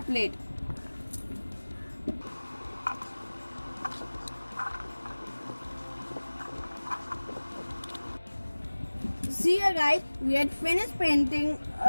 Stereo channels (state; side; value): inverted; both; correlation -1.00